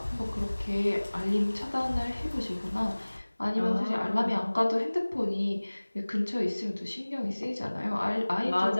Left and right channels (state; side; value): inverted; both; correlation -1.00